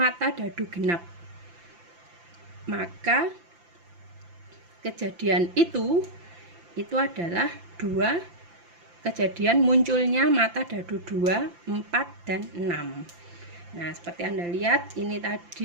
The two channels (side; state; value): left; late; 5.8 ms